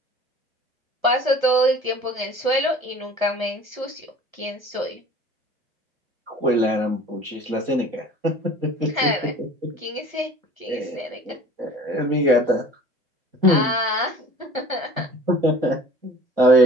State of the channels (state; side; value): late; left; 1.2 ms